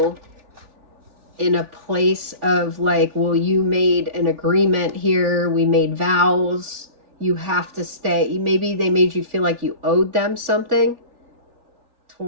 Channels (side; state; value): left; late; 3.4 ms